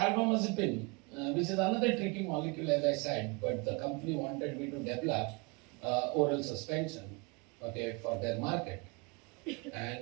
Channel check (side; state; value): left; quieter; 29.1 dB